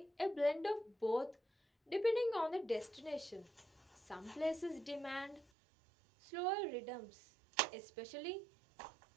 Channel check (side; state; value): left; drops out; at 5.5 s